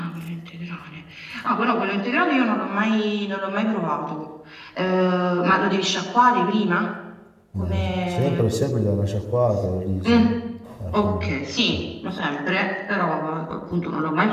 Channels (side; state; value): both; identical; correlation 1.00